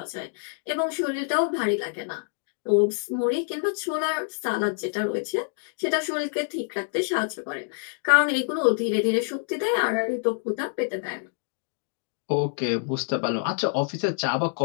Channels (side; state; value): right; silent; digital silence